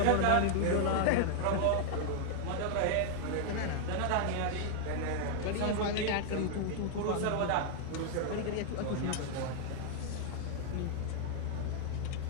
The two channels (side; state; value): both; different; correlation 0.00